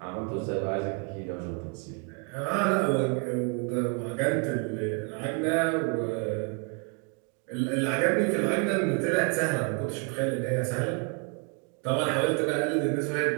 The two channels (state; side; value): quieter; left; 38.1 dB